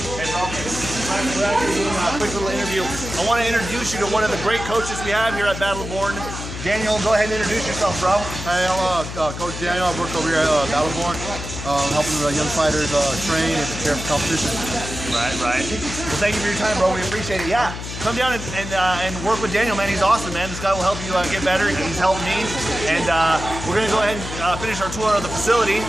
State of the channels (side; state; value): left; noise; hum, 8 dB below the sound